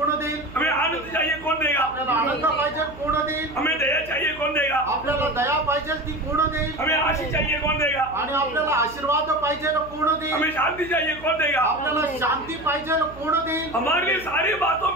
देईल? हमें आनंद चाहिए कौन देगा? आपल्याला आनंद पाहिजे कोण देईल? हमें दया चाहिए कौन देगा? आपल्याला दया पाहिजे ती कोण देईल? हमें आशीष चाहिए कौन देगा? आणि आपल्याला आशीर्वाद पाहिजे कोण देईल? हमें शांति चाहिए कौन देगा? आपल्याला शांती पाहिजे कोण देईल? हमारे लिए सारी बातों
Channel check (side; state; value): right; noise; hum, 17 dB below the sound